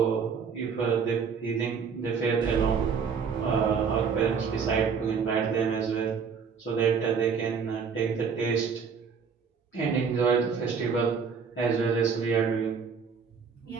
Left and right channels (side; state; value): left; quieter; 6.0 dB